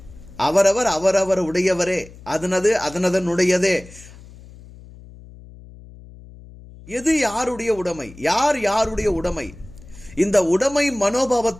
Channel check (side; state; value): left; noise; hum, 20 dB below the sound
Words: அவரவர் உடையவரே, அதனதனுடையதே. எது யாருடைய உடைமை, யாருடைய உடைமை? இந்த உடைமை